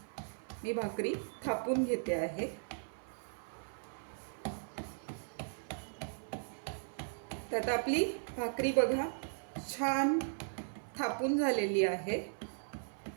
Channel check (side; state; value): left; silent; 53 dB below the other